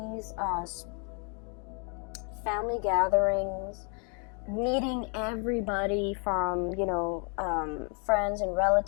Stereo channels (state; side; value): quieter; right; 38.2 dB